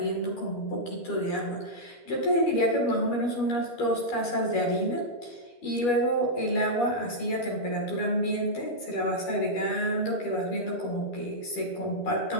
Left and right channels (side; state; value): right; late; 12 ms